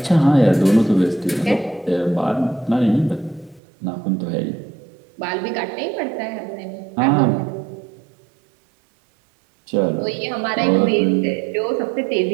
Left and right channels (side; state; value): left; drops out; at 3.6 s